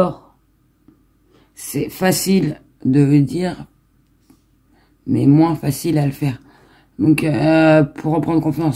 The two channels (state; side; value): identical; both; correlation 1.00